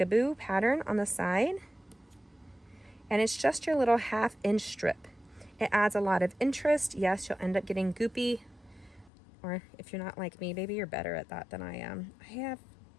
pattern on the side. And it's just your little 1/2 inch strip. It adds a lot of interest. Yes, you'll end up getting goopy. Or if you're not like me, maybe you're better at that than I am. I have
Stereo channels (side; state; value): right; drops out; at 9.1 s